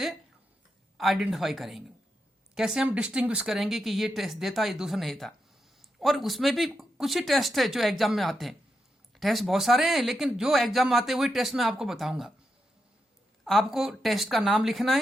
आइडेंटिफाई करेंगे, कैसे हम डिस्टिंग्विश करेंगे कि ये टेस्ट देता ये दूसरा नहीं देता। और उसमें भी कुछ ही टेस्ट है जो एग्जाम में आते हैं, टेस्ट बहुत सारे हैं लेकिन जो एग्जाम में आते हैं वही टेस्ट मैं आपको बताऊंगा। आपको टेस्ट का नाम लिखना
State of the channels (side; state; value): both; normal; correlation 0.85